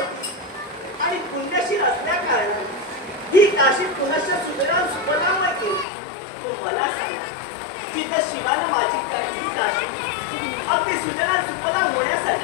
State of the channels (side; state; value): right; drops out; at 5.9 s